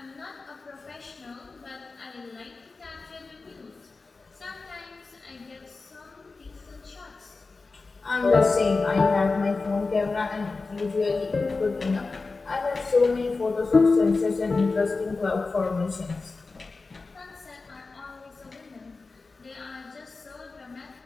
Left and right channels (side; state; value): right; quieter; 3.9 dB